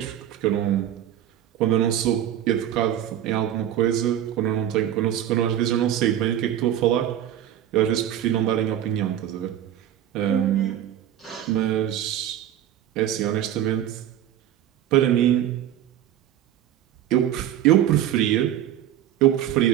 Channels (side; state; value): left; quieter; 11.3 dB